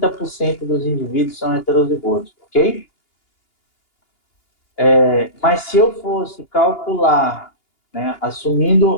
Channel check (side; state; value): right; late; 2.8 ms